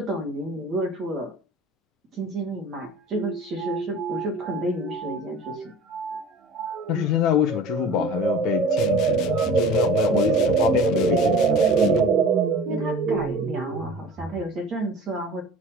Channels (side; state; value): both; normal; correlation 0.40